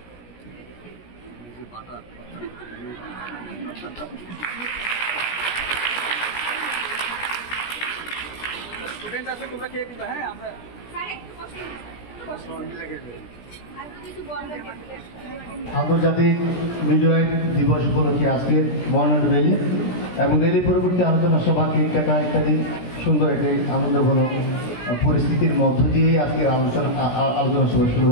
স্টুডেন্ট আছে তোমরা খেয়ে দিবা। হ্যাঁ আমরা আন্তর্জাতিক হৃদয় দিবস উপলক্ষে আজকের বর্ণাঢ্য র্যালি এবং র্যালি পরবর্তী আলোচনা সভা কেক কাটা ইত্যাদি সুন্দর একটি আনন্দঘন পরিস্থিতির মধ্য দিয়েই আজকের আলোচনা সভা শুরু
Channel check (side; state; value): right; late; 17 ms